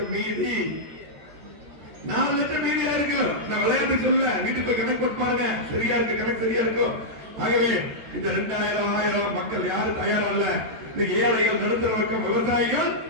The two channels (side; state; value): left; late; 14 ms